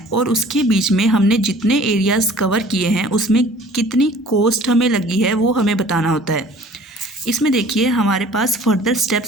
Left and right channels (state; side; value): normal; both; correlation 0.50